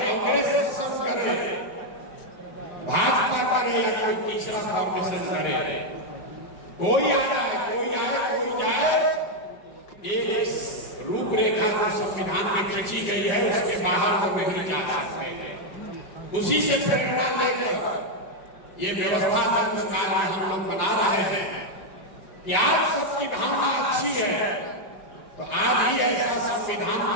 शासन करे, भाजपा करे या कोई तीसरा कॉम्बिनेशन करे, कोई आए कोई जाए, एक रूपरेखा जो संविधान में खींची गई है उसके बाहर वो नहीं जा सकते हैं। उसी से प्रेरणा लेकर ये व्यवस्था संस्कार हम लोग बना रहे हैं कि आज सबकी भावना अच्छी है तो आज ही ऐसा संविधान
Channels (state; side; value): late; right; 4.9 ms